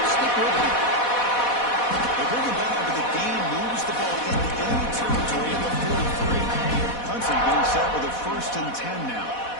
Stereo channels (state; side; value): late; right; 4.1 ms